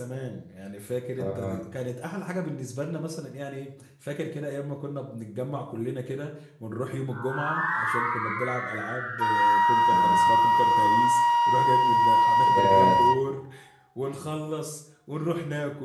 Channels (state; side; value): identical; both; correlation 1.00